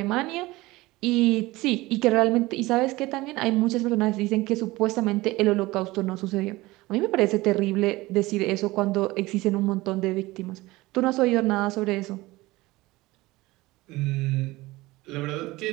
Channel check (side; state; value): left; quieter; 19.9 dB